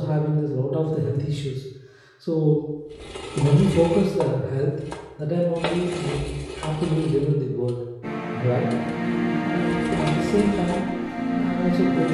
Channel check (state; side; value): identical; both; correlation 1.00